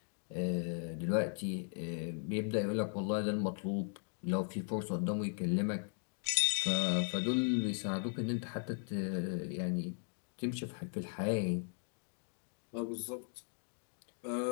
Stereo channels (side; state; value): right; silent; 53 dB below the other